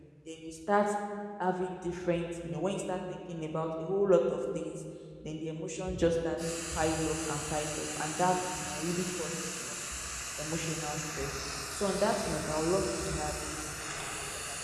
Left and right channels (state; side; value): identical; both; correlation 1.00